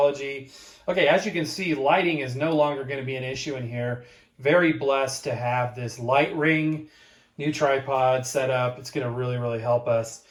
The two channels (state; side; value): identical; both; correlation 1.00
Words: Okay, as you can see, lighting is no longer going to be an issue in here. Very blessed to have this light ring, new tripod set up. It's going to really help us.